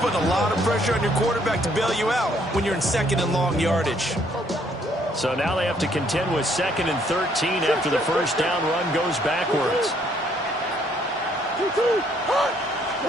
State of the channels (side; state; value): both; normal; correlation 0.66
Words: a lot of pressure on your quarterback to bail you out when you're in 2nd and long yardage. So now they have to contend with 2nd and 13 after the first down run goes backwards.